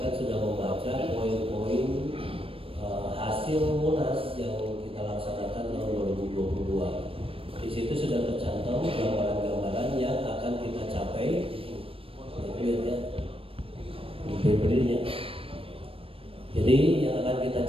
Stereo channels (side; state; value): left; late; 0.27 ms